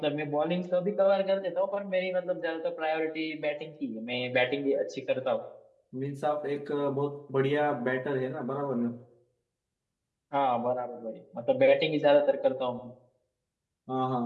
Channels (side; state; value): both; identical; correlation 1.00